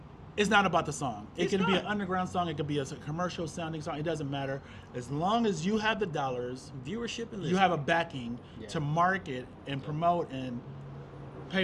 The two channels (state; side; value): identical; both; correlation 1.00